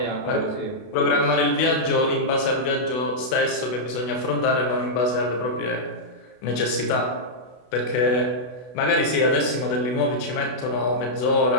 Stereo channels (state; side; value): late; right; 32 ms